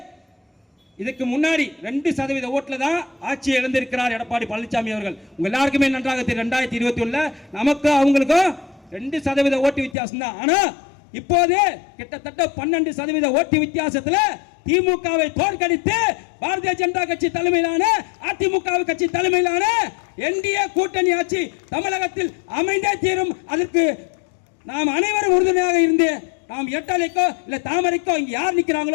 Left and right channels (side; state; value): right; drops out; at 10.0 s